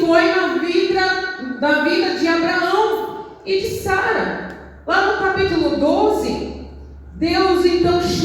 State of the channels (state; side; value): identical; both; correlation 1.00